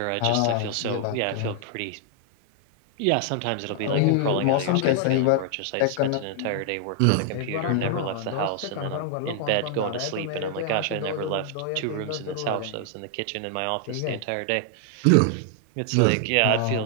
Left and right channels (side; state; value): both; different; correlation 0.00